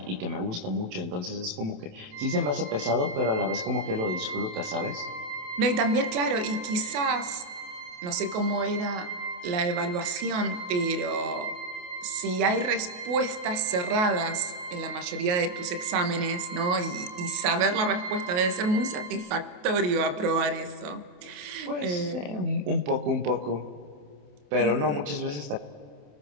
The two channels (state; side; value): late; left; 28 ms